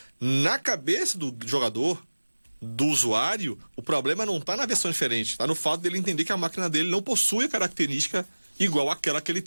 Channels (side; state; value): both; inverted; correlation -1.00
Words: na cabeça do jogador, do usuário, o problema não está na versão diferente, está no fato dele entender que a máquina dele não possui a característica igual àquela que ele